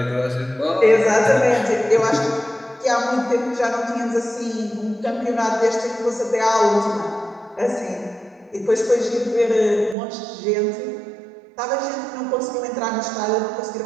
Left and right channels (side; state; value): left; drops out; at 10.0 s